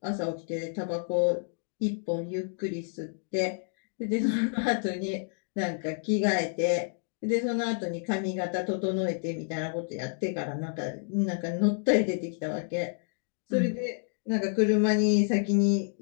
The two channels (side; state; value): right; silent; digital silence